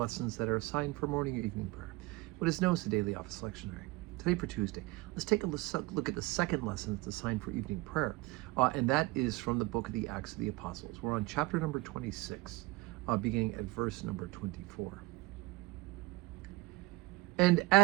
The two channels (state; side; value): quieter; left; 21.9 dB